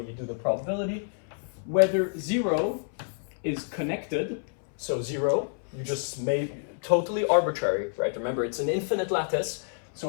do the probability. Whether 0 is connected, so 0, you just made totally arbitrary, right? Remember, it's an infinite lattice, so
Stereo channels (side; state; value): right; silent; 59 dB below the other